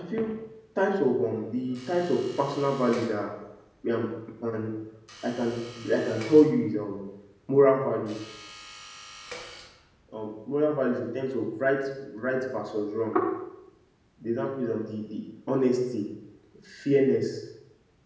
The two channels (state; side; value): identical; both; correlation 1.00